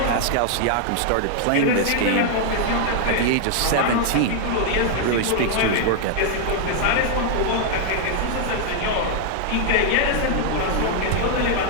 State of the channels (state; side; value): different; both; correlation 0.00